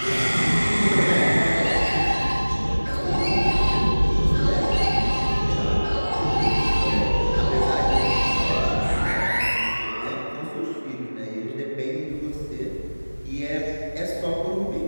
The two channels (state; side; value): inverted; both; correlation -1.00